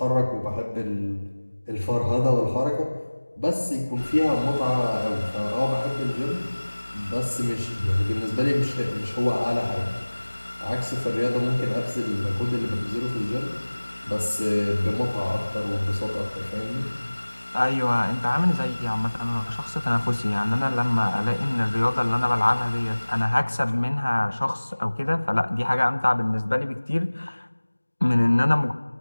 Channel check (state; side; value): inverted; both; correlation -1.00